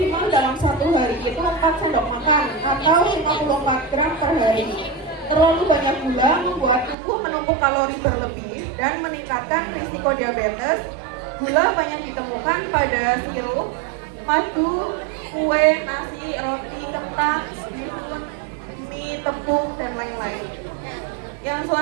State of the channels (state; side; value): drops out; left; at 7.0 s